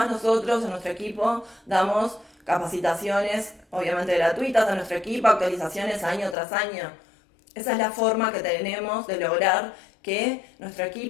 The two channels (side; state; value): right; drops out; at 6.4 s